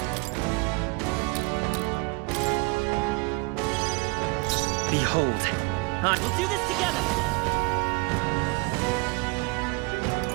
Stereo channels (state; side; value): quieter; left; 27.7 dB